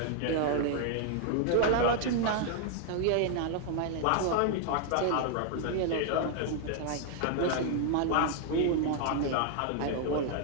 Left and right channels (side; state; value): both; different; correlation 0.00